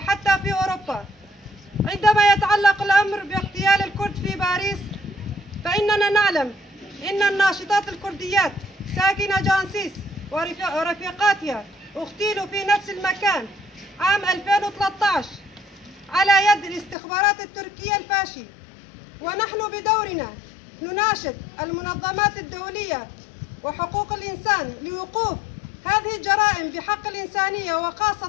في أوروبا. عندما يتعلق الأمر باغتيال الكرد في باريس، فإننا نعلم إن الناشطات الكرديات ساكنة جانسيس ورفيقاتها اغتيلوا في نفس المكان عام 2013 على يد الاستخبارات التركية الفاشي. ونحن بدورنا نناشد المنظمات الدولية وحقوق الإنسان لوقوف هذه الجرائم بحق الإنسانية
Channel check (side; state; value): right; drops out; at 16.9 s